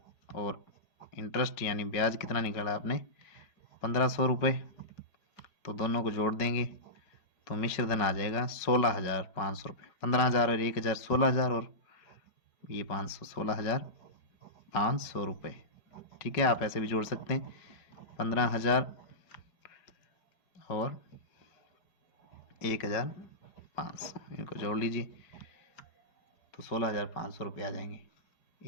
और इंटरेस्ट यानी ब्याज कितना निकाला आपने, 1500 रुपये। तो दोनों को जोड़ देंगे तो मिश्र धन आ जाएगा 16,500 रुपये। 15,000 और 1,000 16,000, और ये 500 16,500 रुपये। ठीक है, आप ऐसे भी जोड़ सकते हैं, 15,000 और 1,500, इनको जोड़ लीजिए तो 16,500 रुपये आ जाएंगे।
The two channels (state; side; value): late; right; 4.9 ms